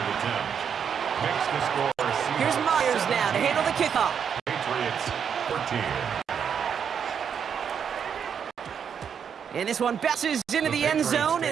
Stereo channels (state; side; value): quieter; left; 7.5 dB